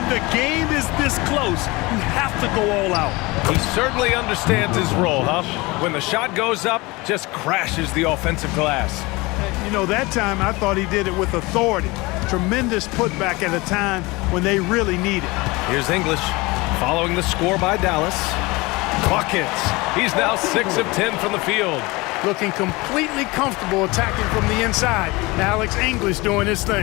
the game is this close, you have to go all out. He certainly understands his role, huh? When the shot goes up, just crashes the offensive glass. You know, that time I thought he did it with authority. Tremendous putback at a time when they really need it. Here's English following the score by Dallas. Buckets. He's now 6 of 10 from the field. Looking completely comfortable attacking from the inside. Alex English doing his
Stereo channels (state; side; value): quieter; right; 23.4 dB